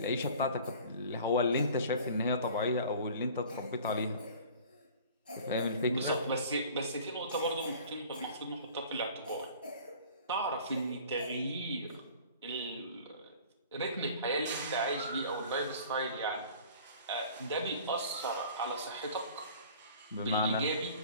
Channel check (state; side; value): inverted; both; correlation -0.46